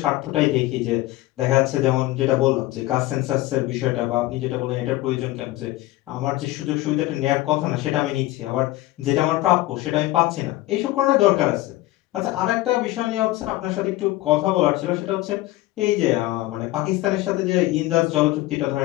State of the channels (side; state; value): right; quieter; 17.6 dB